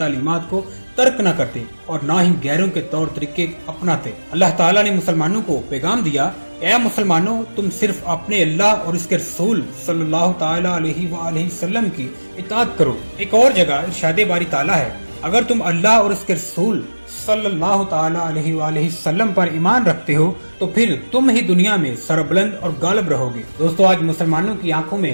کو ترک نہ کرتے اور نہ ہی غیروں کے طور طریقے اپناتے۔ اللہ تعالیٰ نے مسلمانوں کو پیغام دیا، اے مسلمانوں، تم صرف اپنے اللہ اور اس کے رسول صلی اللہ تعالی علیہ وآلہ وسلم کی اطاعت کرو۔ ایک اور جگہ ارشاد باری تعالیٰ ہے، اگر تم اللہ اور اس کے رسول صلی اللہ تعالی علیہ وآلہ وسلم پر ایمان رکھتے ہو تو پھر تم ہی دنیا میں سربلند اور غالب رہو گے۔ دوستو، آج مسلمانوں کی آنکھوں میں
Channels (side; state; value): both; inverted; correlation -1.00